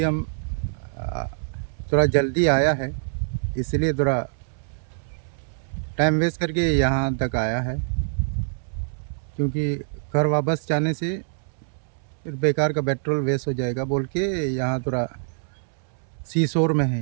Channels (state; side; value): silent; left; 62 dB below the other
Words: हम आ, थोड़ा जल्दी आया है, इसलिए थोड़ा टाइम वेस्ट करके यहाँ तक आया है, क्योंकि घर वापस जाने से फिर बेकार का पेट्रोल वेस्ट हो जाएगा बोल के यहाँ थोड़ा सीशोर में है।